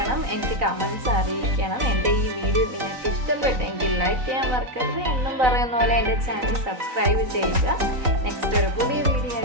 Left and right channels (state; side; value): late; left; 3.9 ms